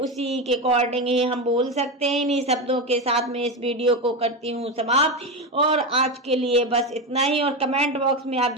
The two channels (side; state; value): both; normal; correlation 0.15